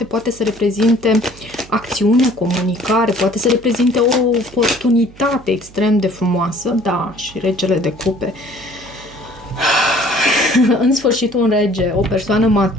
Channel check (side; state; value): right; noise; hum, 22 dB below the sound